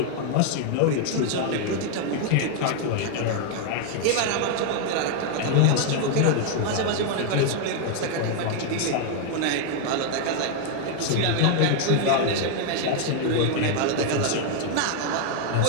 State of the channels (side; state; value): both; different; correlation 0.00